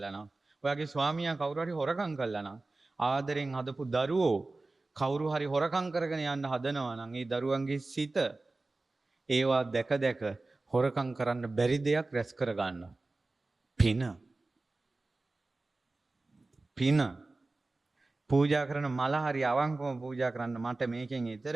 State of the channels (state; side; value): quieter; left; 3.3 dB